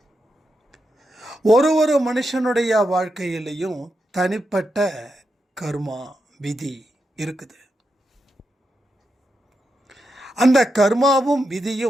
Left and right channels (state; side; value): normal; both; correlation 0.86